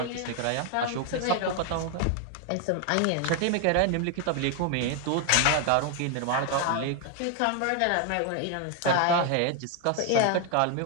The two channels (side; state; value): both; different; correlation 0.00